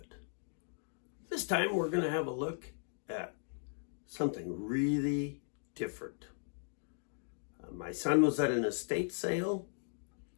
This time we're going to have a look at something really different. My son was at an estate sale,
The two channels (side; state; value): right; silent; digital silence